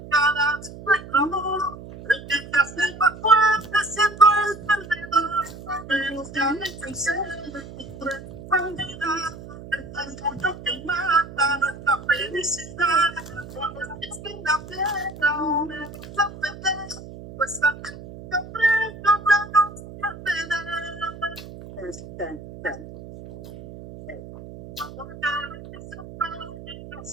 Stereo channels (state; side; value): noise; right; hum, 14 dB below the sound